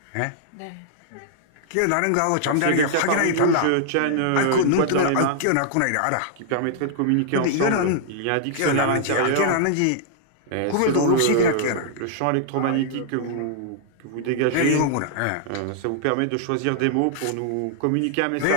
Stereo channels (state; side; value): different; both; correlation -0.01